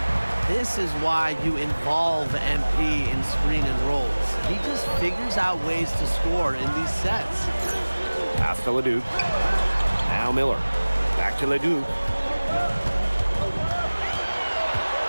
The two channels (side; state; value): both; inverted; correlation -1.00